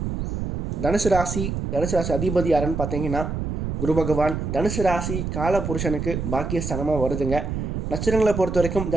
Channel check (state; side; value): noise; right; rumble, 4 dB below the sound